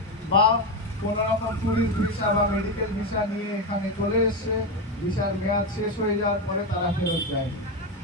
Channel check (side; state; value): both; normal; correlation 0.12